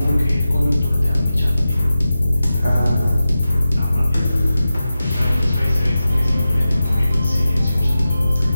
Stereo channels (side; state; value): both; inverted; correlation -0.93